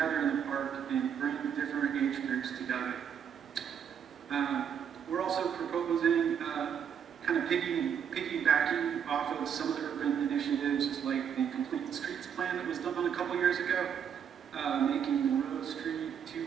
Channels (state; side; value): quieter; left; 8.1 dB